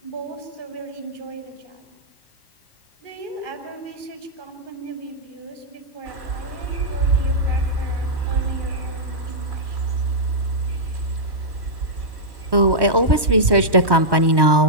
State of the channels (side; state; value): left; late; 1.2 ms